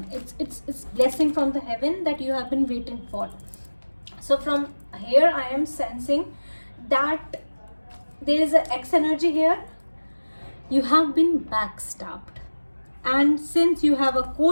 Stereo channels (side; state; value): both; inverted; correlation -1.00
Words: It's blessing from the heaven that you have been waiting for. So from here I am sensing that there is an X energy here. You have been backstabbed, and since you have a